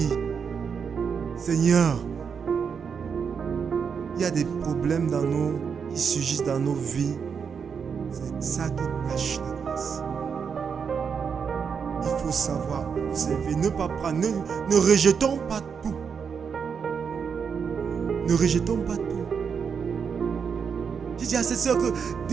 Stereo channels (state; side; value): quieter; left; 6.5 dB